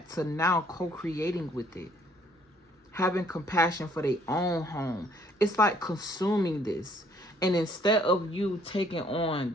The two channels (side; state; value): both; normal; correlation 0.63